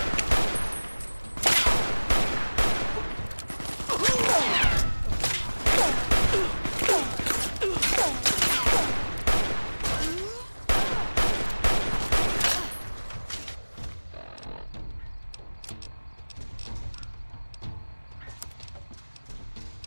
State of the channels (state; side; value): inverted; both; correlation -1.00